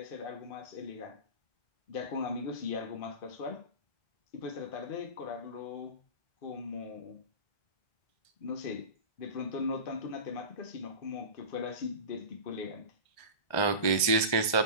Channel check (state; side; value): late; right; 1.3 ms